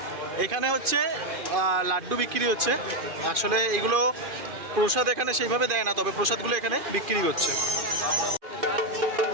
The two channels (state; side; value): late; left; 2.5 ms